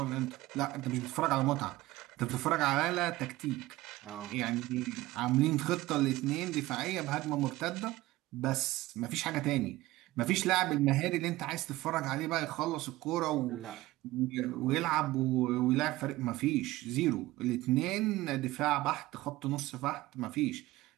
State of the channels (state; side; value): quieter; left; 17.9 dB